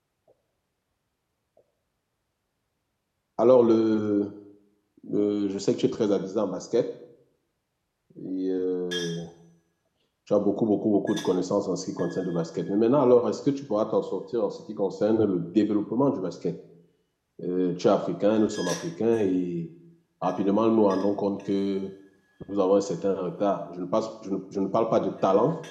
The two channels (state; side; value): identical; both; correlation 1.00